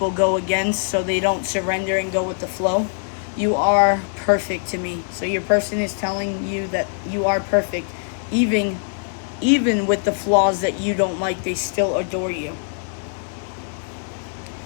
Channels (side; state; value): right; silent; digital silence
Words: go against, so they don't surrender and go with the flow. You are perfect to me. So your person is telling you that you are perfect. Even with the flaws that you don't like, they still adore you.